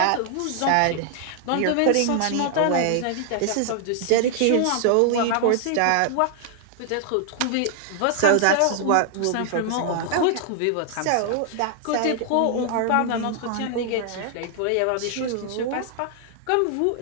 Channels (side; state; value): both; different; correlation 0.00